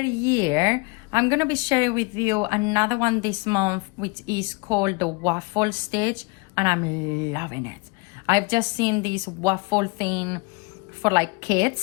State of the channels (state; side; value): quieter; right; 28.9 dB